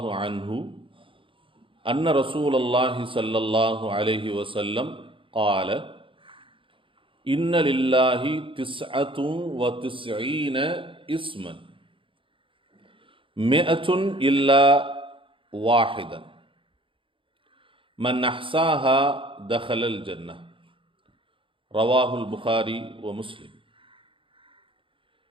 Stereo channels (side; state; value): left; late; 0.25 ms